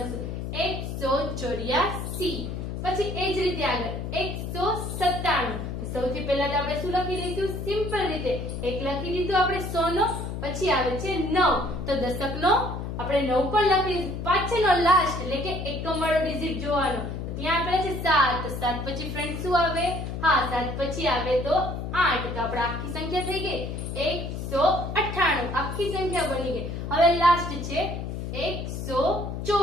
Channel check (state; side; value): noise; left; hum, 5 dB below the sound